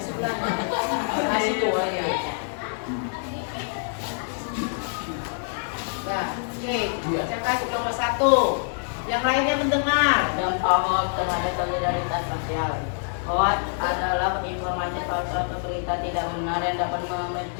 Nah, situ ya. Ya, oke. Bacakan kelompok 1. Yang lainnya mendengar. Dampak hoax terhadap solidaritas sosial. Hoax adalah informasi palsu atau berita tidak benar yang dapat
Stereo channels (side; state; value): right; silent; 61 dB below the other